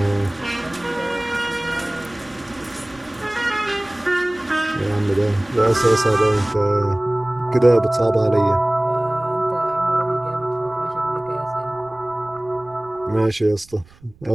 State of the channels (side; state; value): right; noise; rumble, 27 dB below the sound